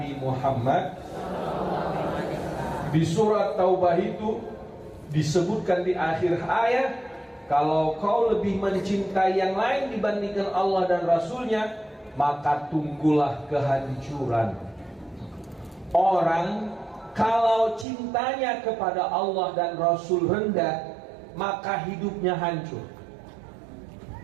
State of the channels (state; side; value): drops out; left; at 17.9 s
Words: Muhammad. Di surat Taubah itu disebutkan di akhir ayat, kalau kau lebih mencintai yang lain dibandingkan Allah dan Rasulnya, maka tunggulah kehancuran. Orang kalau cintanya kepada Allah dan Rasul rendah, maka hidupnya hancur.